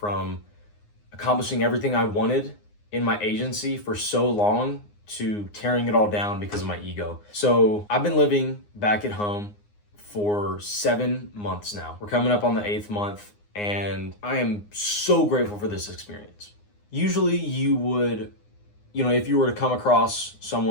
accomplishing everything I wanted in my agency for so long to tearing it all down because of my ego. So I've been living back at home for 7 months now. We're coming up on the 8th month, and I am so grateful for this experience. Usually you would, if you were to come across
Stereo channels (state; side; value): late; right; 9.7 ms